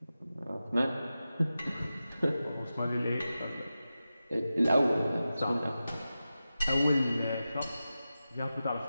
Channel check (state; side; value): inverted; both; correlation -0.93